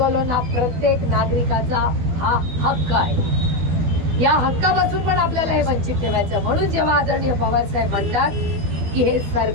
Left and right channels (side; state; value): left; late; 12 ms